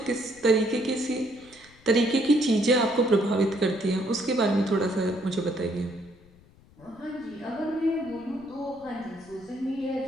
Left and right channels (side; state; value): left; noise; rumble, 26 dB below the sound